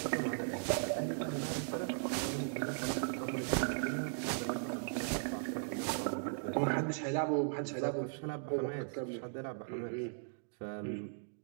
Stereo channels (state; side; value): silent; left; digital silence